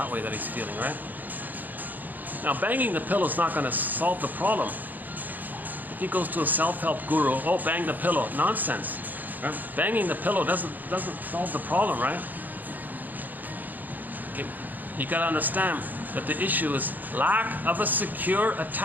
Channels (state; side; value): late; left; 0.085 ms